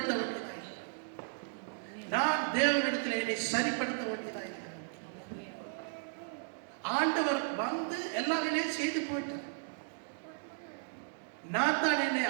வேண்டியதாக, நான் தேவனிடத்தில் என்னை சரிப்படுத்த வேண்டியதாக. ஆண்டவர் வந்து எல்லாமே செய்து போயிட்டார். நான் தான் என்னை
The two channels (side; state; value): left; silent; digital silence